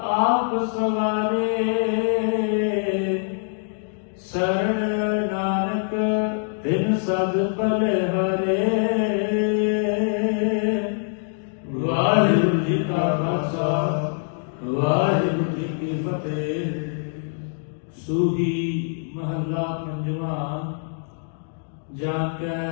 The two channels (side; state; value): right; silent; digital silence